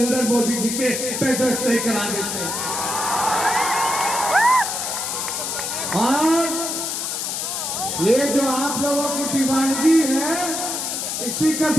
मोदी जी के बेड रेस्ट नहीं करा देते। और ये जो आप लोगों की दीवानगी है, इसी का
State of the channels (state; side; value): noise; left; hiss, 3 dB below the sound